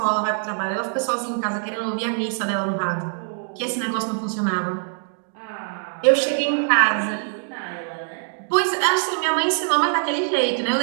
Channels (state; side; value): silent; left; digital silence